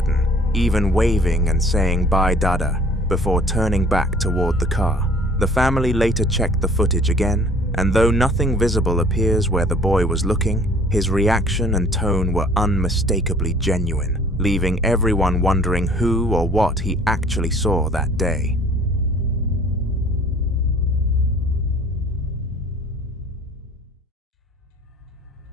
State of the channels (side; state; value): both; normal; correlation 0.53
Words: even waving and saying "Bye, Dada," before turning back toward the car. The family later checked the footage again, and though nothing visible appears where the boy was looking, his reaction and tone were unmistakably genuine, leaving everyone wondering who or what he actually saw that day.